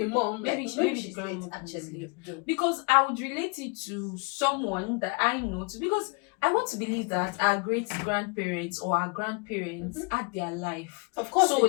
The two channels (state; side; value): quieter; right; 32.5 dB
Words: mom. Maybe she's grandmother actually. Because I would relate it to someone that I know because I want to believe that our great grandparents or our grandparents had their life. Of course. So